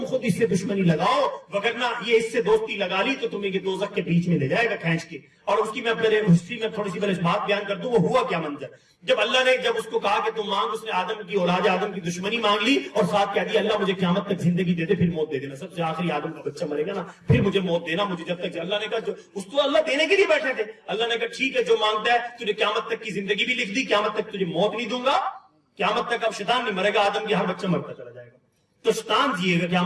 خود اس سے دشمنی لگاؤ, وگرنہ یہ اس سے دوستی لگا لی تو تمہیں یہ دوزخ کے بیچ میں لے جائے گا کھینچ کے. اور اس کی میں پہلے ہسٹری میں تھوڑی سی پہلے بات بیان کر دوں, وہ ہوا کیا منظر. جب اللہ نے جب اس کو کہا کہ تم مانگ, اس نے آدم کی اولاد آدم کی دشمنی مانگ لی, اور ساتھ کہہ دیا اللہ مجھے قیامت تک زندگی دے دے, پھر موت دے دینا, سب سے آخری آدم کا بچہ مرے گا نا, پھر مجھے موت دینا, مجھے جب تک. اللہ نے کہا جو اس کو اللہ دینے کے لیے بیٹھے تھے, اللہ نے کہا ٹھیک ہے جو مانگتا ہے, تجھے قیامت تک کی زندگی بھی لکھ دی, قیامت تک تجھے موت نہیں دوں گا, قیامت تک اب شیطان نہیں مرے گا, آدم کے ہر بچہ مرتا چلا جائے گا, تو شیطان جیے گا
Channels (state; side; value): identical; both; correlation 1.00